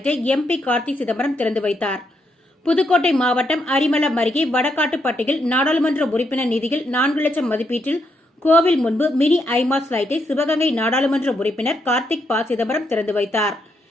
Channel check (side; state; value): both; normal; correlation 0.78